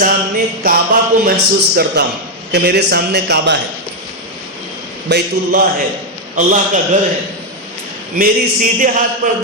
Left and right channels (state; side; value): normal; both; correlation 0.03